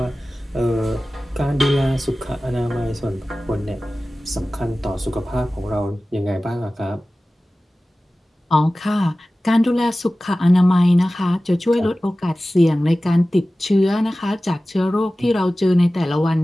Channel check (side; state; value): both; normal; correlation 0.96